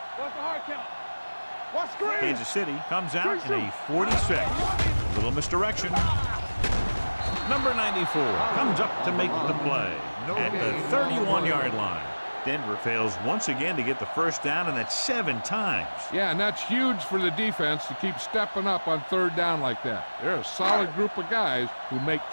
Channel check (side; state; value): both; inverted; correlation -1.00